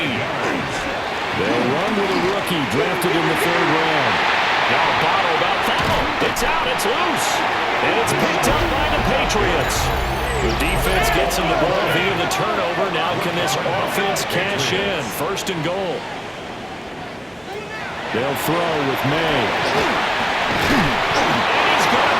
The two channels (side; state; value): both; identical; correlation 1.00